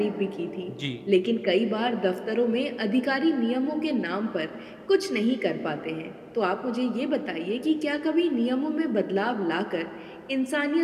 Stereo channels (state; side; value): identical; both; correlation 1.00